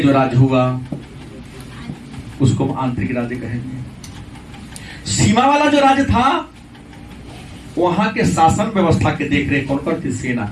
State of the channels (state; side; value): identical; both; correlation 1.00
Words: जो राज्य हुआ उसको आंतरिक राज्य कहेंगे। सीमा वाला जो राज्य था वहां के शासन व्यवस्था के देखरेख कौन करती? सेना